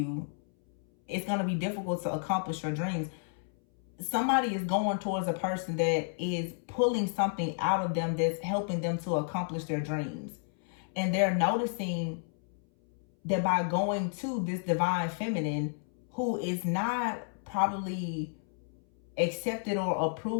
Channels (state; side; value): silent; right; 57 dB below the other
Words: it's going to be difficult to accomplish your dreams. Somebody is going towards a person that is pulling something out of them that's helping them to accomplish their dreams. And they're noticing that by going to this Divine Feminine, who is not probably accepted or